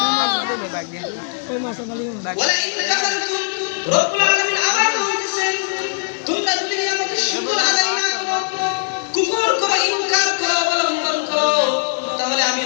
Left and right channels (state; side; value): silent; right; digital silence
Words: ওয়ালা ইন কাফারতুম, রব্বুল আলামিন আবার বলতেছেন, তোমরা যদি নিয়ামতের শুকর আদায় না করো, কুফর করো, ইনকার করো, অবলম্বন করো, তাহলে আমি